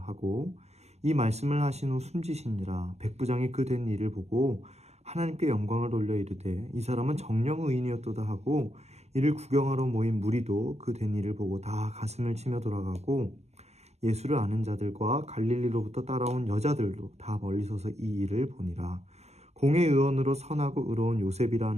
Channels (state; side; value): late; left; 0.31 ms